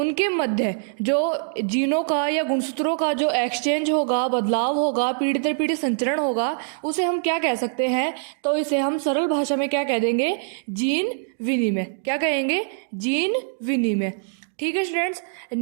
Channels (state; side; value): silent; left; digital silence